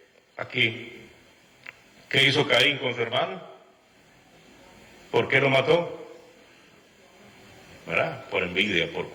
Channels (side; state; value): both; identical; correlation 1.00